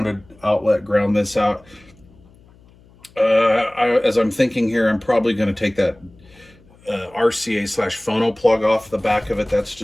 outlet, ground this out. As I'm thinking here, I'm probably going to take that RCA/phono plug off the back of it. That's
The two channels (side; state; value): left; noise; hum, 28 dB below the sound